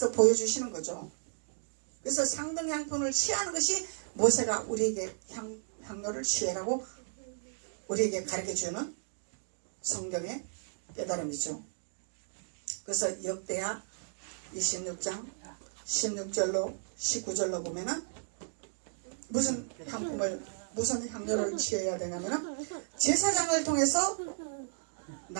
보여주시는 거죠. 그래서 상등향품을 취하는 것이 모세가 우리에게 향료를 취해라고 우리에게 가르쳐주는 성경의 깨달음이죠. 그래서 역대하 26장 16절로 19절로 보면은 무슨 향료를 취해야 되냐면은 제사장을 통해서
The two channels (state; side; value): silent; left; digital silence